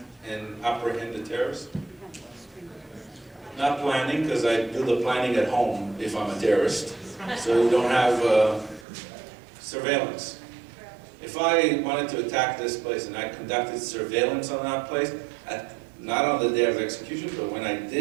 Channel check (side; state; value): left; drops out; at 8.8 s